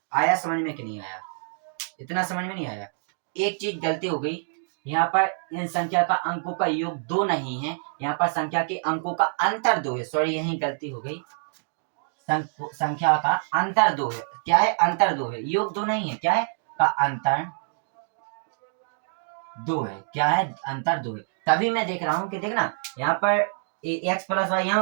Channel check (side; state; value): left; silent; digital silence